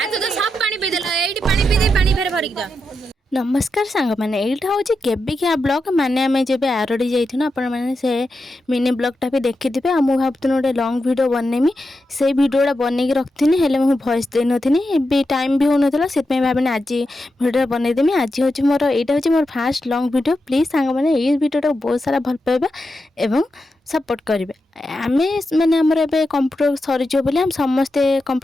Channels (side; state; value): both; normal; correlation 0.88